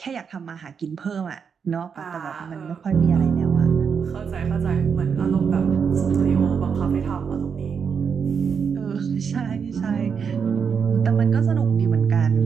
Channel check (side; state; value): left; quieter; 6.5 dB